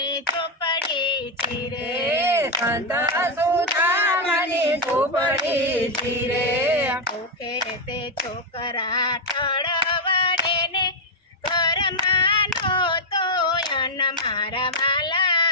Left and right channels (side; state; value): both; normal; correlation 0.01